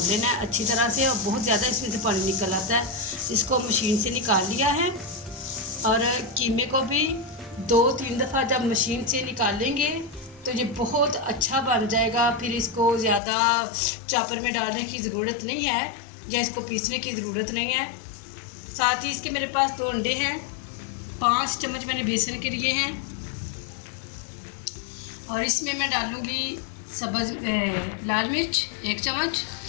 लेना है अच्छी तरह से, और बहुत ज़्यादा इसमें से पानी निकल आता है। इसको मशीन से निकाल लिया है और कीमे को भी 2-3 दफ़ा जब मशीन से निकाल लेंगे तो ये बहुत अच्छा बन जाएगा। फिर इसको ज़्यादा चॉपर में डालने की ज़रूरत नहीं है या इसको पीसने की ज़रूरत नहीं है। साथ ही इसके मेरे पास 2 अंडे हैं, 5 चम्मच मैंने बेसन के लिए हैं और इसमें मैं डालूँगी लाल मिर्च 1 चम्मच,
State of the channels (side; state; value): right; drops out; at 13.2 s